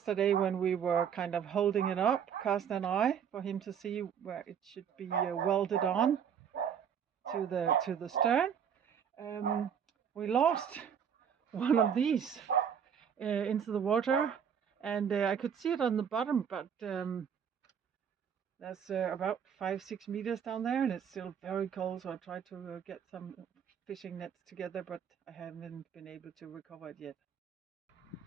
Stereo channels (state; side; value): quieter; left; 7.9 dB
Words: when we were kind of holding it up, Kirsten and I, for him to see where it should be welded on to the stern, we lost one of these. into the water, and I could see it on the bottom, but that's about 5-6 meters down there, and it's still very cold. So I tried to get some fishing nets together, but I haven't been able to recover it yet.